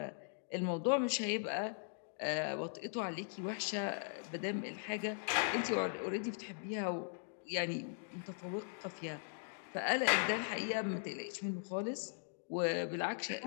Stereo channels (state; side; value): silent; right; digital silence